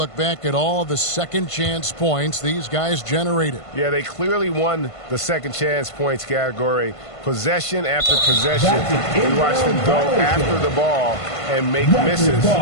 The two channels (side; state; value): right; late; 1.5 ms